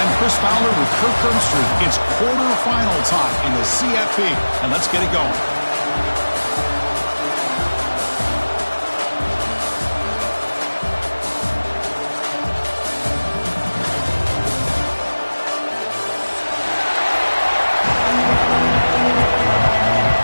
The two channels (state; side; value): inverted; both; correlation -1.00